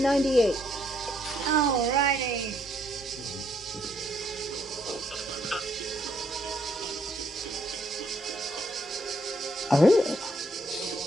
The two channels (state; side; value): normal; both; correlation 0.71